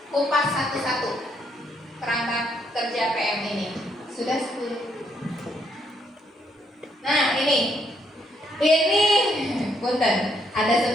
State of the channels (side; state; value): both; normal; correlation 0.73